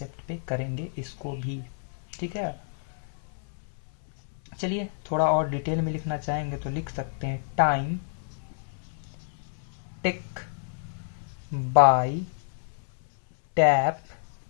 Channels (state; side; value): silent; right; 59 dB below the other